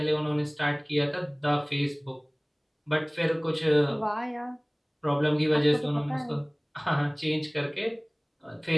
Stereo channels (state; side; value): identical; both; correlation 1.00